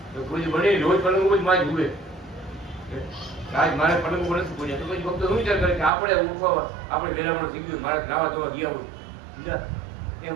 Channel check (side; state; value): left; drops out; at 5.9 s